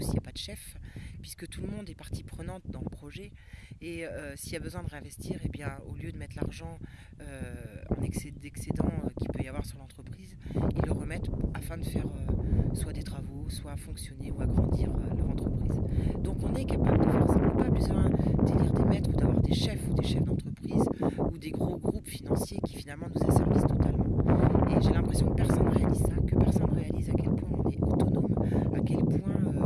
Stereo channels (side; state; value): both; identical; correlation 1.00